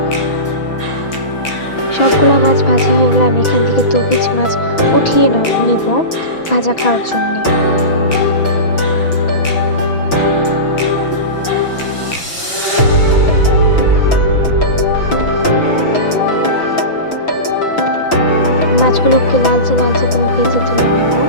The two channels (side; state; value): right; late; 6.0 ms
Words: সবগুলো মাছ ভাজা হয়ে গেলে আমি এখান থেকে 2 পিস মাছ উঠিয়ে নিব ভাজা খাওয়ার জন্য। মাছগুলোকে লালচে লালচে করে ভেজে তুলে নেব।